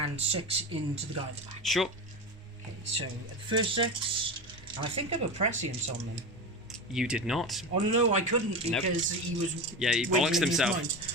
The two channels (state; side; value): normal; both; correlation 0.23